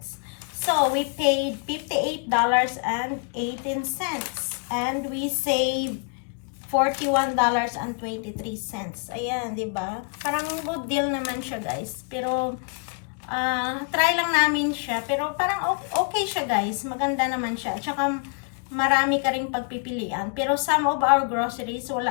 So we paid $58.18. And we saved $41.23. Ayan, di ba? Parang good deal naman siya, guys. Pero, try lang namin siya. Pero parang okay siya, guys. Maganda naman siya. At saka, marami ka rin pagpipilian. Pero some of our groceries,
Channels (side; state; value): right; quieter; 39.7 dB